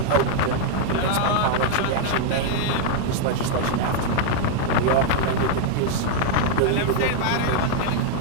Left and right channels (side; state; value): both; different; correlation 0.00